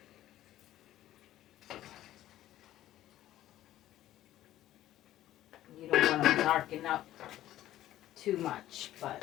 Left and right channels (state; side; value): quieter; right; 13.7 dB